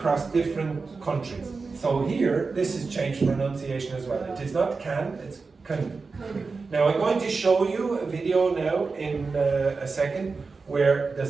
different countries. So here, this has changed pronunciation as well. It is not can, it's can. Now I'm going to show you a video now in a second where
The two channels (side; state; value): left; quieter; 4.4 dB